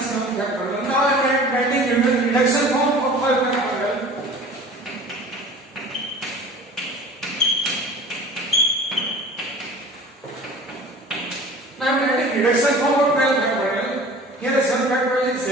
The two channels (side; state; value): both; normal; correlation 0.42